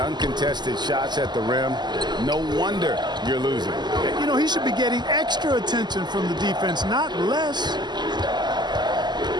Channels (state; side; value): late; left; 0.21 ms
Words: shots at the rim, no wonder you're losing. You know, he should be getting extra attention from the defense, not less.